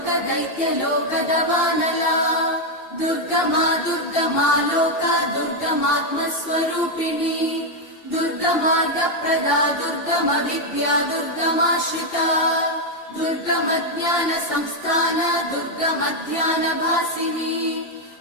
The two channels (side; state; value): right; late; 2.8 ms